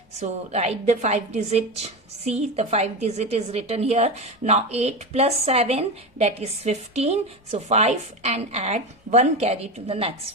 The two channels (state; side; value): normal; both; correlation 0.20